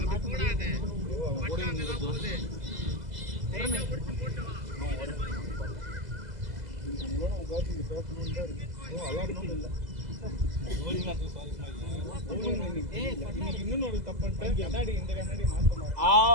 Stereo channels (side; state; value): left; late; 2.0 ms